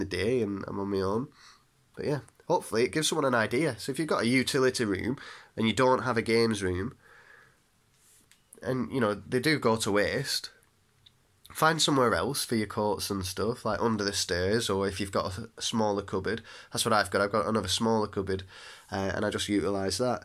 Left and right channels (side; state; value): both; identical; correlation 1.00